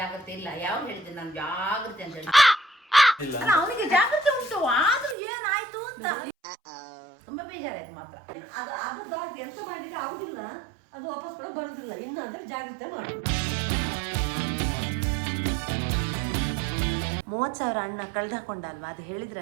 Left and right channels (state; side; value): drops out; left; at 5.2 s